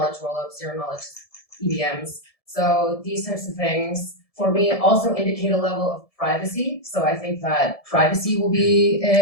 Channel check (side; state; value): right; late; 1.7 ms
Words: rollups, zero knowledge EVMs. So these types of things for me also indicate a level of privacy. So I think that privacy will be